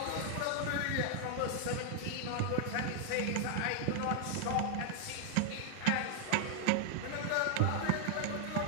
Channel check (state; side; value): different; both; correlation 0.00